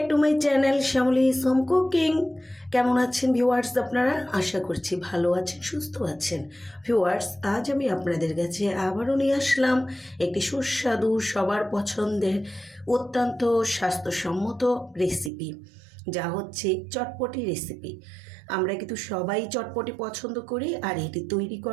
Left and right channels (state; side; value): drops out; left; at 15.3 s